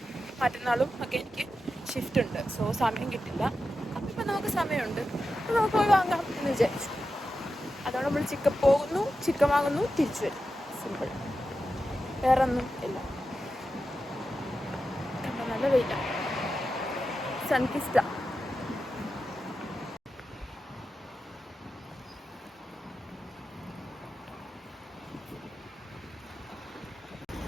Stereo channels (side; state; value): both; normal; correlation 0.90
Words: മറ്റന്നാളും ഒക്കെ എനിക്ക് ഷിഫ്റ്റ് ഉണ്ട്. സോ സമയം കിട്ടില്ല. അപ്പം ഇപ്പം നമുക്ക് സമയമുണ്ട്, നമുക്ക് പോയി വാങ്ങാം എന്ന് വിചാരിച്ചു. അതുകൊണ്ട് നമ്മൾ ചിക്കൻ വാങ്ങുന്നു, തിരിച്ചു വരും. സിമ്പിൾ, വേറെ ഒന്നും ഇല്ല. നല്ല വെയിലാണ്. സൺകിസ്റ്റ.